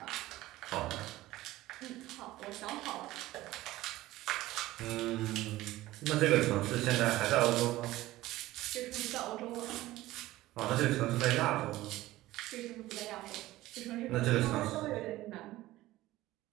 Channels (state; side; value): quieter; left; 16.8 dB